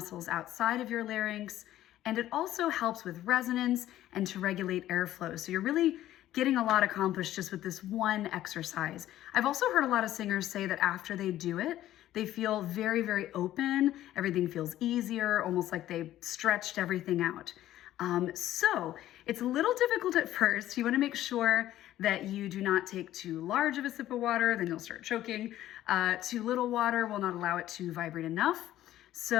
outside of your larynx. And it also helps with resonance and to regulate airflow. So you're really getting a lot accomplished just with this one exercise. I've also heard a lot of singers say that after they do it, they feel very, very open. Everything feels easier, almost like they stretched everything out. So it's a little difficult at first. You want to make sure that you do not take too large of a sip of water, then you'll start choking. Too little water will not allow it to vibrate enough.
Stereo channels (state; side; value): quieter; right; 13.4 dB